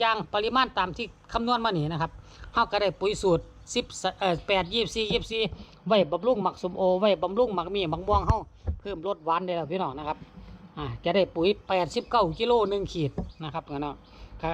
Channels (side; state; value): both; identical; correlation 1.00